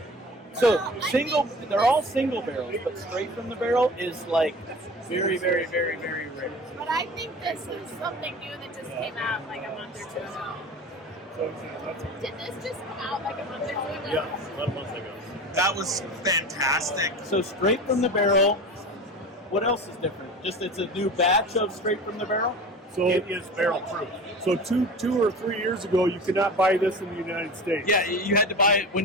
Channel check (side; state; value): both; normal; correlation 0.34